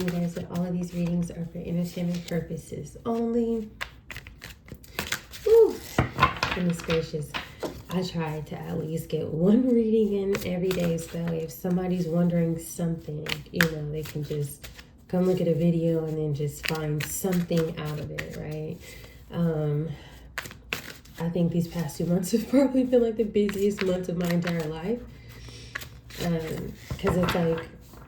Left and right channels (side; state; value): both; identical; correlation 1.00